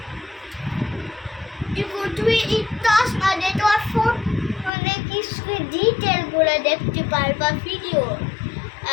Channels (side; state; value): right; drops out; at 4.7 s